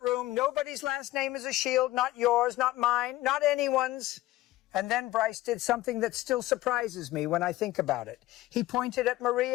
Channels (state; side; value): quieter; right; 16.7 dB